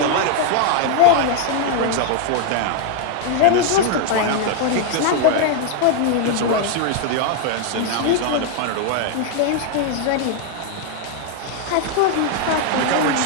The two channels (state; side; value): different; both; correlation 0.00